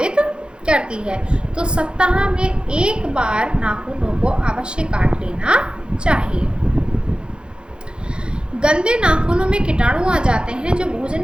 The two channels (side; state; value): left; late; 0.052 ms